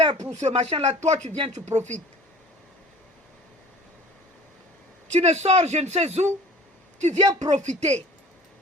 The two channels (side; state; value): both; normal; correlation 0.46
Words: pour ce machin-là, toi, tu viens, tu profites. Tu ne sors je ne sais où, tu viens profiter.